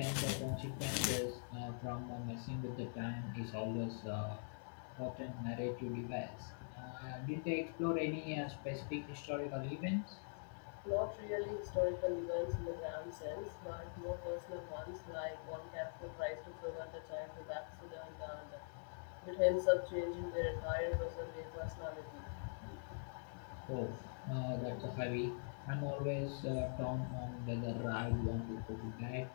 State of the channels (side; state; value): right; silent; digital silence